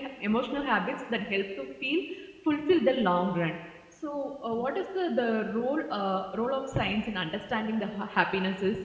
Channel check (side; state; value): both; identical; correlation 1.00